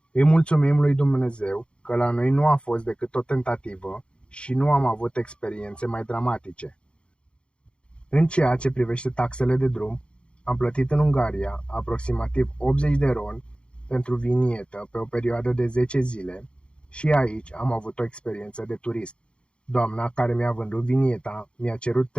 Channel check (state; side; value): late; right; 0.056 ms